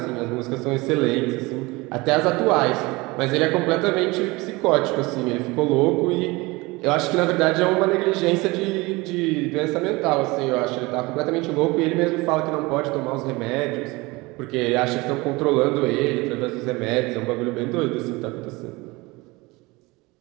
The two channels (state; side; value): quieter; left; 23.1 dB